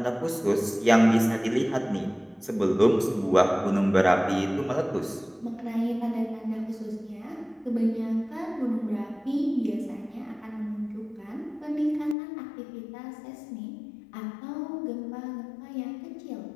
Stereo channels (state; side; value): drops out; right; at 12.2 s